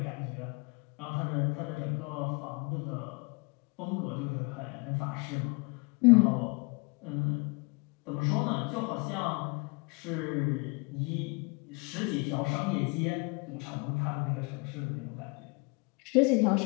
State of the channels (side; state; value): right; quieter; 30.7 dB